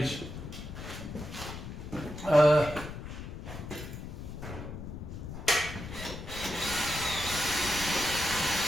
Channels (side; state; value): left; noise; rumble, 9 dB below the sound